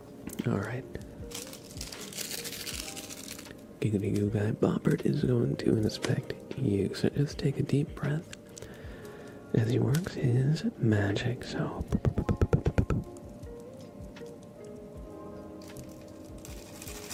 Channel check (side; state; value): both; identical; correlation 1.00